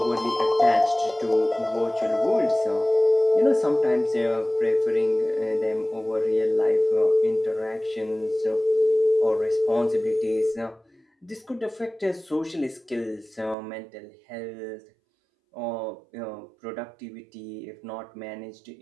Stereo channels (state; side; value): drops out; left; at 13.6 s